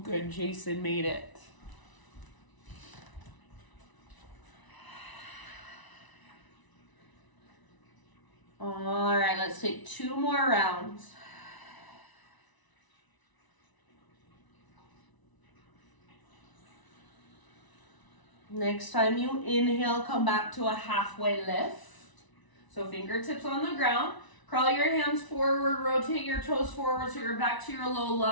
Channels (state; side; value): late; right; 1.0 ms